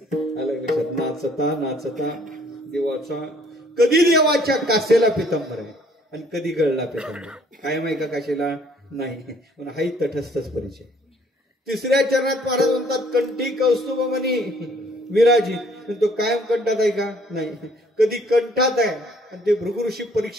आलं लक्षात. नाचता नाचता देवाचा कधी देवाच्या कासेला पितांबर आहे आणि कधी गळला पितांबर. कायम आहे का काशेला? नाही. पण हाही तटस्थच परिचय. तिसऱ्या चरणात महाराज म्हणतात कंठी कौस्तुभमणी विराजित. तो कायम कंठात आहे का? नाही. कधी कंठात आहे आणि ते भृगु ऋषी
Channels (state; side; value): normal; both; correlation 0.61